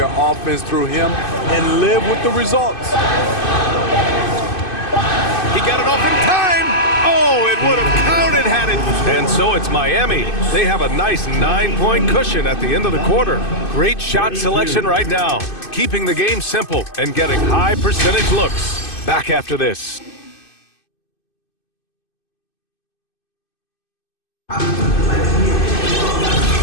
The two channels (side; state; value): right; late; 2.5 ms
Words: offense through him and live with the results. He got it off in time. Oh, it would have counted had it. And so it's Miami. They have a nice 9-point cushion at the end of the quarter. Great shot selection right now. Keeping the game simple and getting high percentage looks. Back after this.